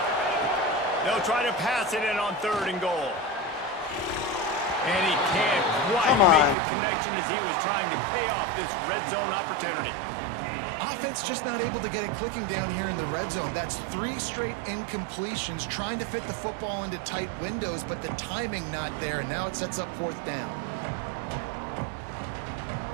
They'll try to pass it in on 3rd and goal. And he can't quite make the connection as he was trying to pay off this red zone opportunity. Offense just not able to get it clicking down here in the red zone. That's 3 straight incompletions, trying to fit the football into tight windows, but the timing not there, and now it sets up 4th down.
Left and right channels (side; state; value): left; drops out; at 6.6 s